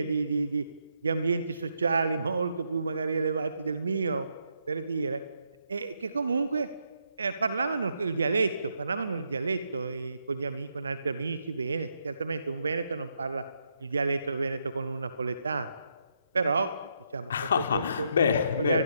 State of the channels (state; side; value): inverted; both; correlation -0.79